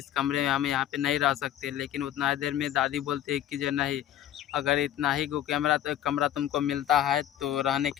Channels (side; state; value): right; quieter; 11.7 dB